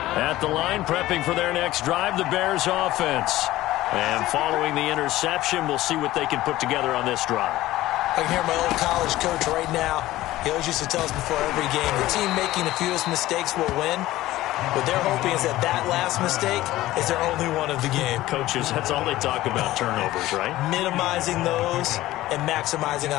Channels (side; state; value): right; quieter; 16.2 dB